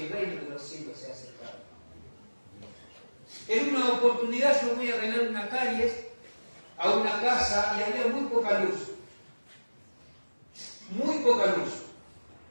el reino de los cielos se ha acercado. En una oportunidad yo voy a arreglar una calle a una casa y había muy poca luz. Muy poca luz.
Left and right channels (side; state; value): both; inverted; correlation -1.00